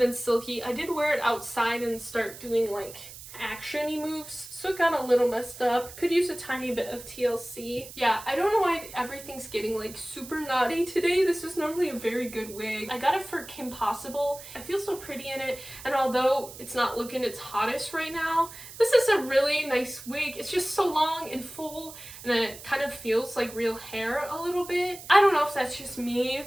and silky. I did wear it outside and start doing like action-y moves, so it got a little messed up. Could use a tiny bit of TLC. Yeah, I don't know why everything's getting like super naughty today. This is normally a very good wig. I got it for Kim Possible. I feel so pretty in it, and although it's not looking its hottest right now, this is a really nice wig. It's just so long and full, and it kind of feels like real hair a little bit. I don't know if that's just me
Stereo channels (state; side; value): noise; right; hiss, 15 dB below the sound